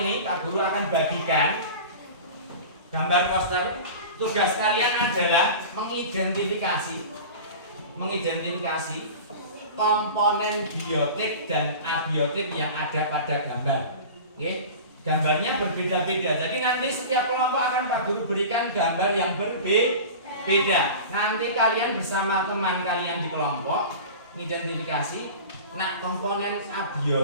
ini Pak Guru akan bagikan gambar poster. Tugas kalian adalah mengidentifikasi komponen biotik dan abiotik yang ada pada gambar. Oke? Gambarnya berbeda-beda. Jadi nanti setiap kelompok akan Pak Guru berikan gambar yang berbeda. Nanti kalian bersama teman kalian di kelompok mengidentifikasi, nah komponen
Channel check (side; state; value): both; inverted; correlation -0.34